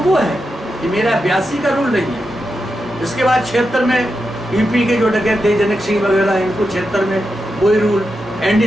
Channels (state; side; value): normal; both; correlation 0.88